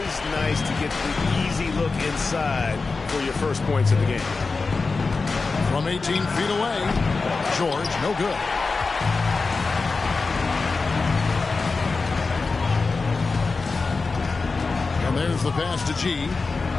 nice to get the easy look inside for your first points of the game. From 18 feet away, George, no good. And there's the pass to G.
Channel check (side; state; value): right; quieter; 4.1 dB